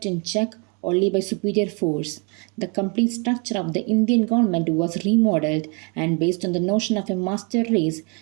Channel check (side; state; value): left; quieter; 31.9 dB